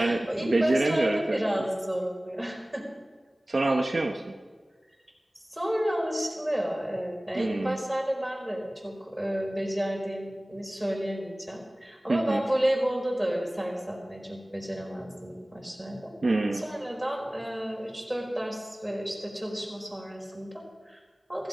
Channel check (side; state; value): both; normal; correlation 0.98